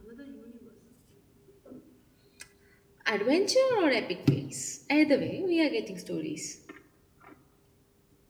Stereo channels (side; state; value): both; identical; correlation 1.00